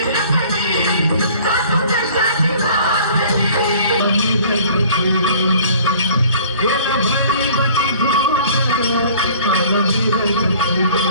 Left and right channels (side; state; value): both; inverted; correlation -0.51